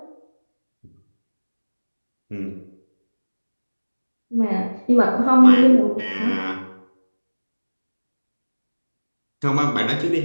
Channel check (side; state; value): both; inverted; correlation -1.00